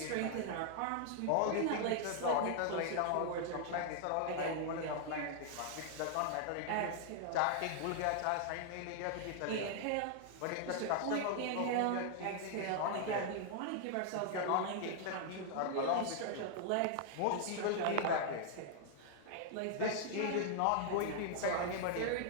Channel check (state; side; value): different; both; correlation 0.00